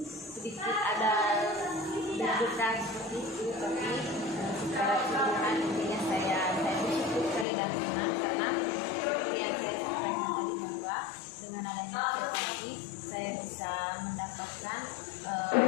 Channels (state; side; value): drops out; right; at 7.5 s